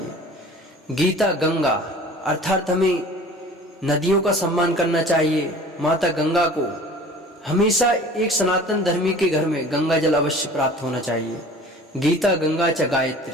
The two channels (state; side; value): normal; both; correlation 0.44